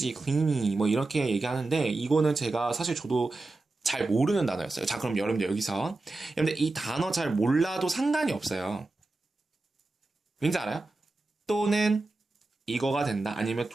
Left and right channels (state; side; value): quieter; left; 3.1 dB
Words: 이렇게 얘기하는데 이거는 제가 사실 저도 잘 모르는 단어였어요. 자, 그럼 여러분들 여기서 여러분들 이 단어 잘 몰라도 상관이 없어요. 왠지 알아요? 또는 이거가 된다. 아니면